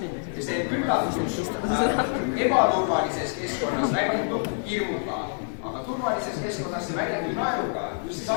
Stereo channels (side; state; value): right; silent; digital silence